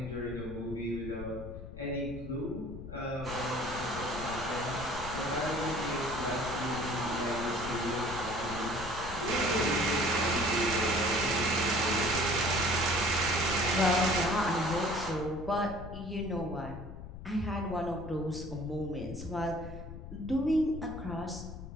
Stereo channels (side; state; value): left; noise; rumble, 11 dB below the sound